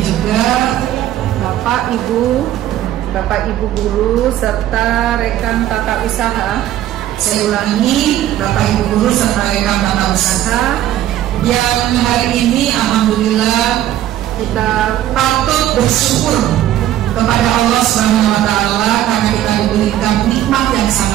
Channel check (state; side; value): quieter; left; 12.6 dB